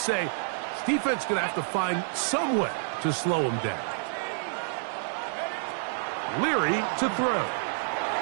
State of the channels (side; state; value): left; silent; digital silence